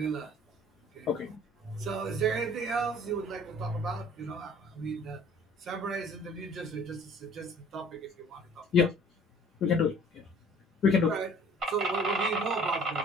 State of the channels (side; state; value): both; normal; correlation 0.52